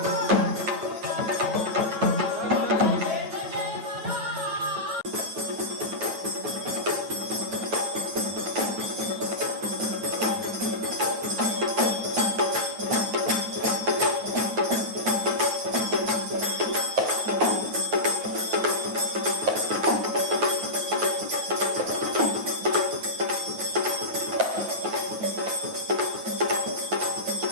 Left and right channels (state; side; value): late; left; 9.3 ms